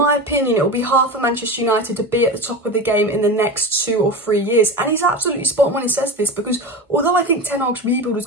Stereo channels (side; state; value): both; normal; correlation 0.26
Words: opinion, it will be hard for Manchester United to be at the top of the game in the next 2 or 3 years. And he's absolutely spot on when he says this, because although I think Ten Hag's rebuild is